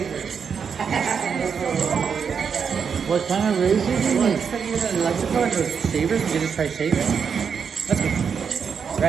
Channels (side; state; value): left; quieter; 6.6 dB